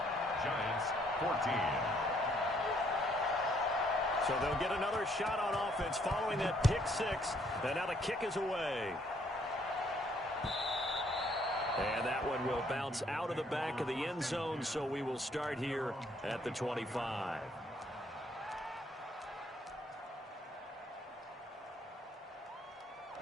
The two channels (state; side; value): normal; both; correlation 0.67